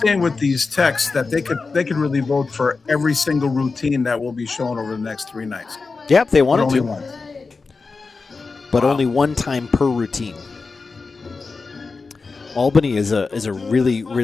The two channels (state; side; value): quieter; right; 4.3 dB